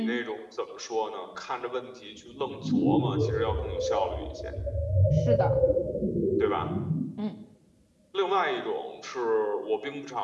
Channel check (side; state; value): both; identical; correlation 1.00